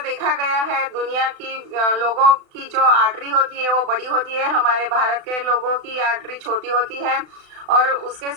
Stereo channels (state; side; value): late; left; 36 ms